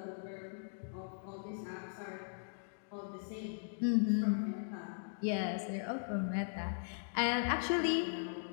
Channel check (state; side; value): silent; right; digital silence